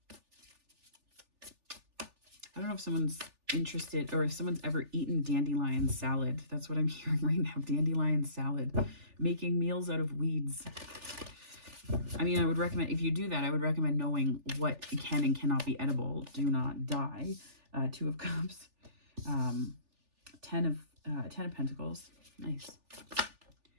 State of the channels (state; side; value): late; left; 3.4 ms